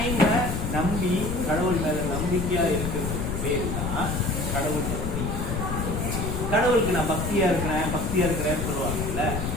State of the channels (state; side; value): noise; left; rumble, 2 dB below the sound